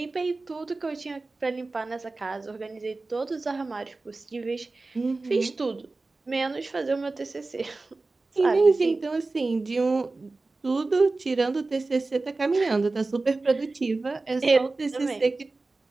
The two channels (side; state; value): left; quieter; 3.5 dB